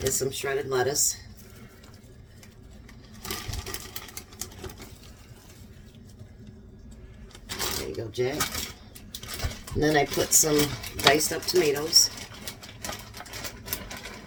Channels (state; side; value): identical; both; correlation 1.00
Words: is some shredded lettuce. There you go, Jack. And then I put some diced up tomatoes.